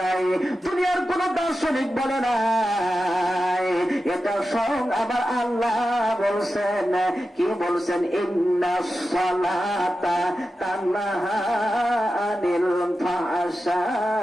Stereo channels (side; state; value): both; normal; correlation 0.92